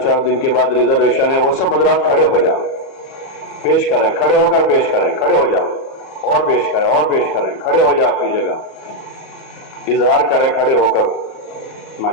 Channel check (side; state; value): right; late; 37 ms